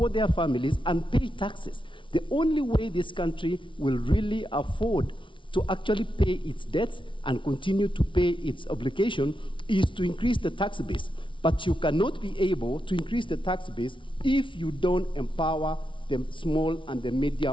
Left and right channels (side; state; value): right; late; 0.25 ms